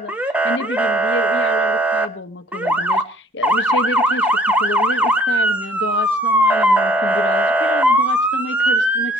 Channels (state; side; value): normal; both; correlation 0.58